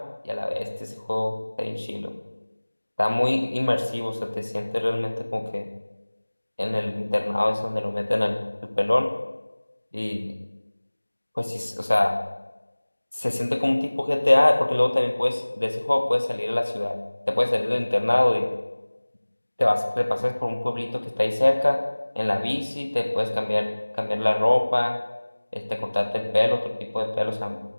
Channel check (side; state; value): both; inverted; correlation -1.00